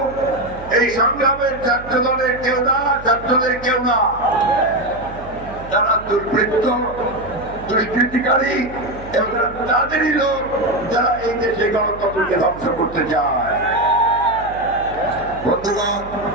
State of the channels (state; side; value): noise; right; hum, 16 dB below the sound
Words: এই সংগ্রামের ছাত্র দলের কেউ না, ছাত্রদের কেউ না, তারা দুর্বৃত্ত, দুষ্কৃতিকারী এবং তাদেরই লোক যারা এই দেশে গণতন্ত্রকে ধ্বংস করতে চায়। বন্ধুগণ,